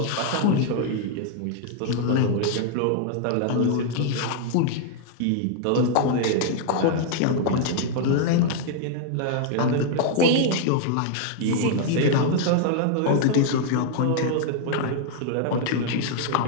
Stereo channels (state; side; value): different; both; correlation 0.00